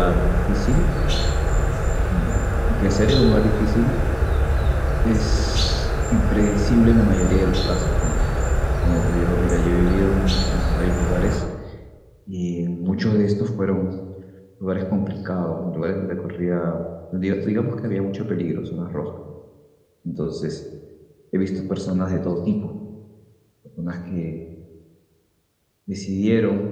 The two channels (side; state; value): both; identical; correlation 1.00